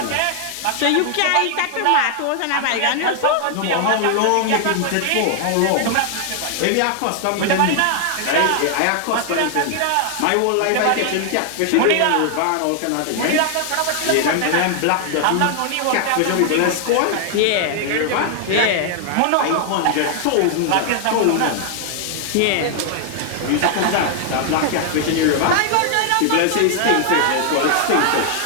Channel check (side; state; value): both; different; correlation 0.00